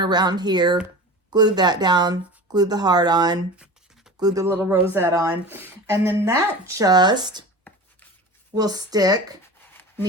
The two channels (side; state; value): both; normal; correlation 0.33